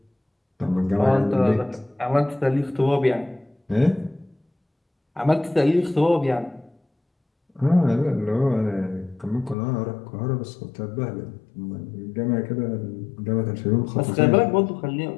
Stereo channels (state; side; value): drops out; right; at 9.6 s